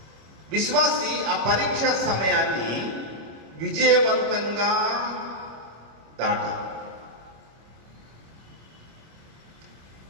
విశ్వాసి ఆ పరీక్ష సమయాన్ని విజయవంతంగా దాటాలి.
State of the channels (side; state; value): left; late; 25 ms